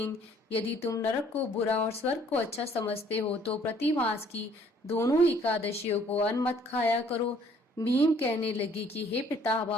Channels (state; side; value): normal; both; correlation 0.60